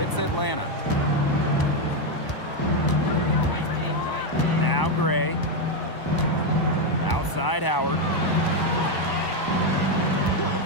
Atlanta. Now Gray. Outside Howard.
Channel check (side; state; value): right; late; 1.0 ms